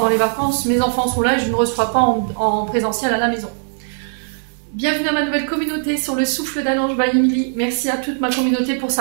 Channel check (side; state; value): left; silent; 66 dB below the other